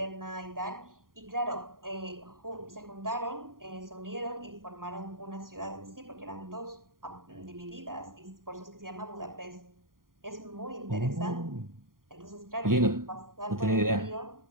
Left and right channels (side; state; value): left; late; 0.91 ms